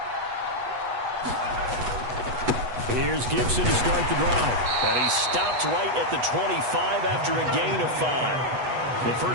Here's Gibson to start the drive. And he stopped right at the 25 after a gain of 5. The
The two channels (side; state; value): left; late; 8.1 ms